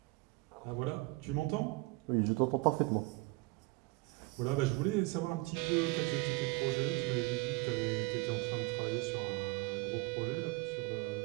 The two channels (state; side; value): quieter; left; 23.3 dB